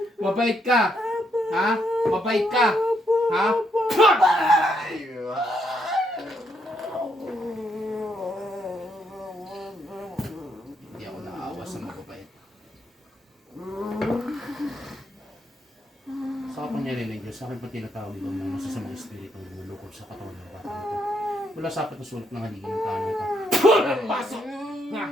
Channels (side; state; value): both; normal; correlation 0.76